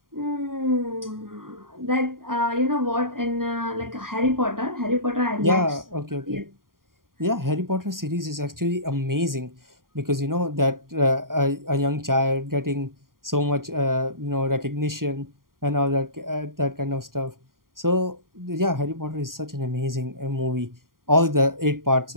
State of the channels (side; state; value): left; late; 0.91 ms